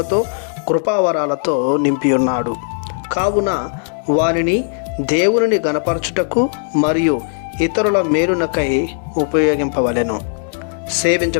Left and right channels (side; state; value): right; silent; digital silence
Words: కృపావరాలతో నింపి ఉన్నాడు. కావున వారిని దేవుని గణపరచుటకు మరియు ఇతరుల మేలునకై ఉపయోగింపవలెను.